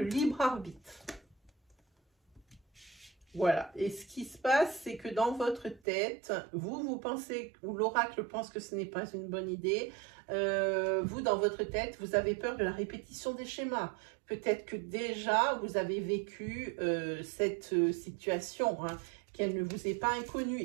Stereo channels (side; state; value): left; drops out; at 5.8 s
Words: libre arbitre. Voilà. Et ce qui se passe, c'est que dans votre tête, vous pensez, ou l'oracle pense que ce n'est pas une bonne idée. Vous, dans votre tête, vous avez peur de la répétition des schémas. Peut-être que déjà, vous avez vécu cette situation, hein, qu'elle ne vous est pas inconnue,